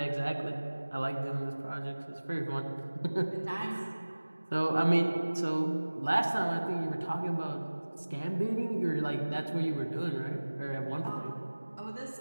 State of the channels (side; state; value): both; inverted; correlation -1.00